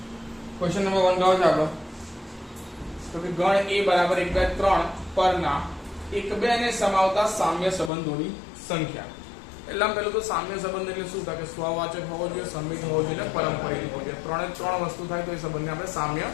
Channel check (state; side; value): drops out; right; at 7.9 s